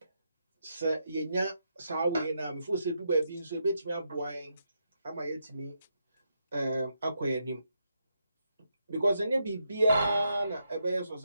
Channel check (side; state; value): both; inverted; correlation -0.81